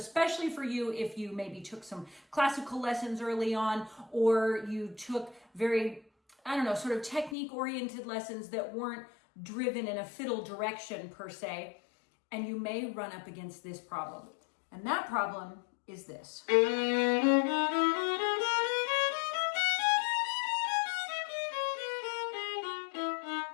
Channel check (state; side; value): drops out; right; at 7.4 s